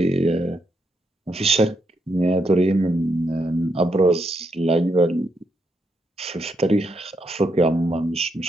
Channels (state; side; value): normal; both; correlation 0.80